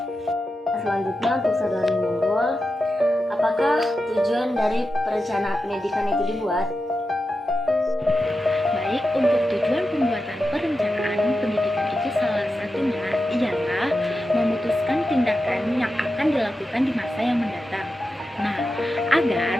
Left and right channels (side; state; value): both; normal; correlation 0.90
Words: Selanjutnya untuk Saudari Nurul, apakah tujuan dari perencanaan pendidikan itu dibuat? Baik, untuk tujuan pembuatan perencanaan pendidikan itu salah satunya ialah memutuskan tindakan yang akan dilakukan di masa yang mendatang. Nah, agar